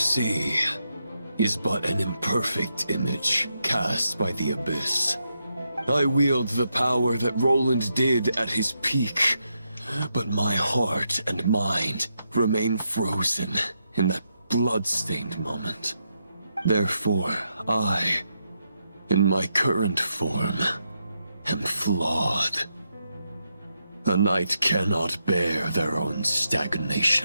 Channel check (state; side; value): inverted; both; correlation -0.83